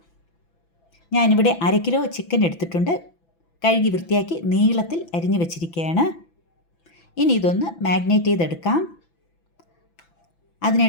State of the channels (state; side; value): late; right; 6.0 ms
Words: ഞാനിവിടെ 1/2 കിലോ ചിക്കൻ എടുത്തിട്ടുണ്ട്. കഴുകി വൃത്തിയാക്കി നീളത്തിൽ അരിഞ്ഞു വെച്ചിരിക്കുകയാണ്. ഇനി ഇതൊന്ന് മാഗ്നേറ്റ് ചെയ്തെടുക്കാം.